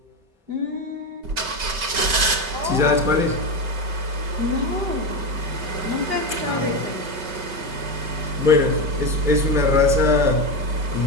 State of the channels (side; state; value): left; late; 5.3 ms